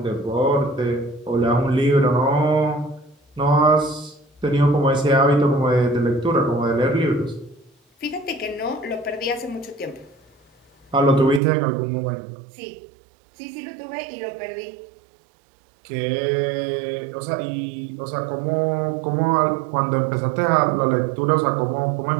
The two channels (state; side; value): drops out; left; at 11.4 s